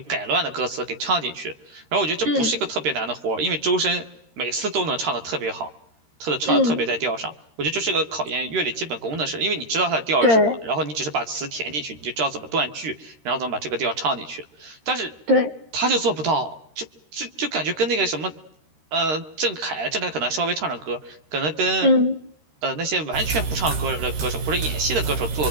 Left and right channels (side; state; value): left; late; 13 ms